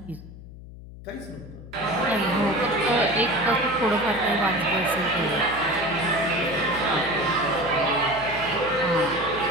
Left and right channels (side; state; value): left; noise; hum, 16 dB below the sound